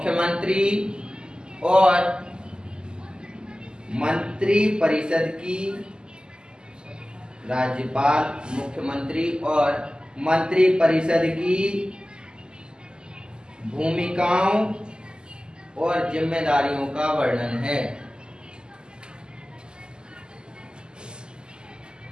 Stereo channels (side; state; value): left; late; 0.047 ms